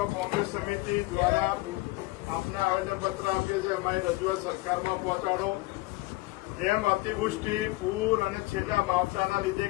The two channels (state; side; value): quieter; right; 21.5 dB